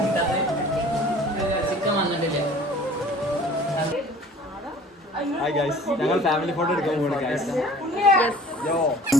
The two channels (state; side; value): normal; both; correlation 0.48